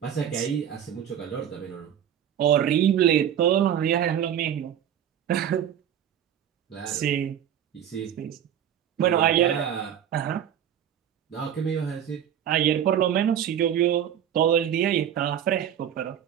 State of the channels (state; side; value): quieter; left; 9.7 dB